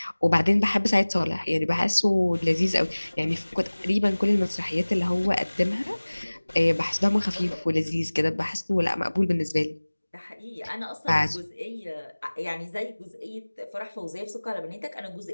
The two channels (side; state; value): both; inverted; correlation -1.00